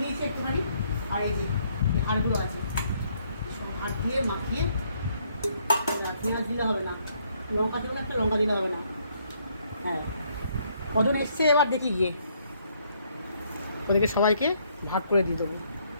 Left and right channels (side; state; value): both; inverted; correlation -0.70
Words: দিয়েছি একটুখানি, আর এই যে এই হাড়গুলো আছে, সব হাড় দিয়ে মাখিয়ে। পেঁয়াজ দিলে হবে না, লঙ্কা দেবো না, একটা লঙ্কা দিলে হবে না। হ্যাঁ, কজন এসছে এবার দেখি গিয়ে, ওদেরকে সবাইকে ভাগ করে দিয়ে দেবো।